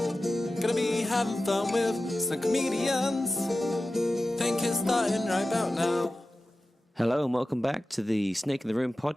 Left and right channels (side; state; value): both; normal; correlation 0.94